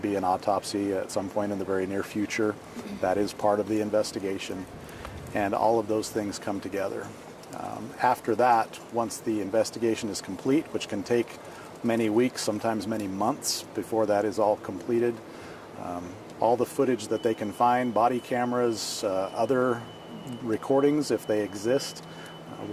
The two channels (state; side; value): identical; both; correlation 1.00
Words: an autopsy at some point in the very near future. That is part of the investigation, and all of those things come together. After that, once the investigation is complete, which can take many weeks, sometimes many months before that is all completed, all the footage that they can find, body cameras, other recordings if they exist,